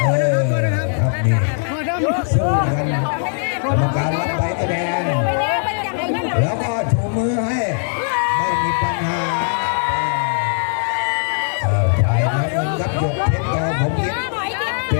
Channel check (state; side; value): silent; right; digital silence